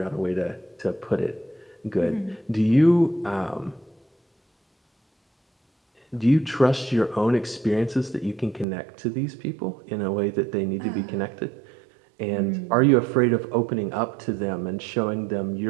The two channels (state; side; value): drops out; left; at 8.7 s